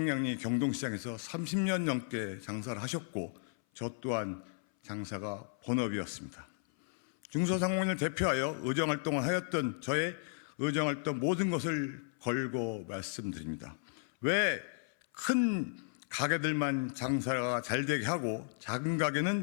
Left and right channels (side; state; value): right; silent; 55 dB below the other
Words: 경동시장에서 30년 넘게 장사를 하셨고 저 또한 장사가 본업이었습니다. 중소상공인을 대표하여 의정활동을 하였던 저의 의정활동 모든 것을 걸고 말씀드립니다. 왜 큰 가게들만 장사가 잘 되게 하고 작은